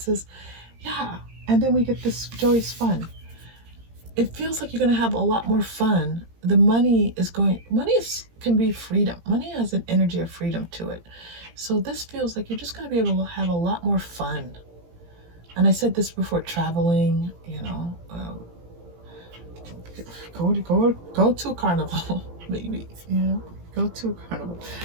Yeah, and then we get this joyous fun. It feels like you're going to have a lot more fun. The money can be freedom. Money has an energy of freedom to it. So this feels like you're just going to be able to have a lot more fun. And I said this before, traveling, you know, go to a carnival, maybe, you know, go to a carnival.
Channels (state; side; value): late; left; 17 ms